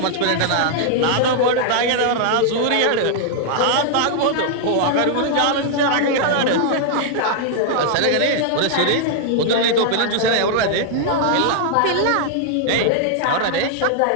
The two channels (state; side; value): different; both; correlation -0.01